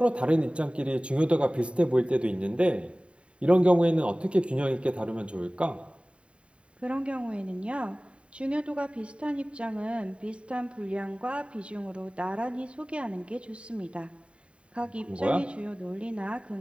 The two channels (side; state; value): left; late; 0.059 ms